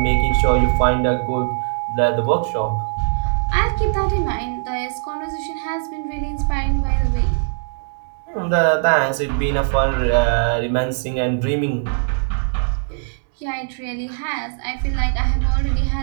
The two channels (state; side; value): silent; left; digital silence